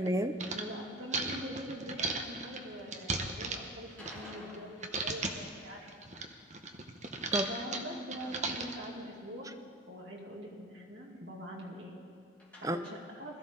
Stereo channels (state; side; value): normal; both; correlation 0.33